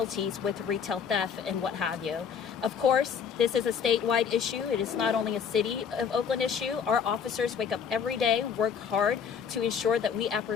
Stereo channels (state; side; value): quieter; right; 7.0 dB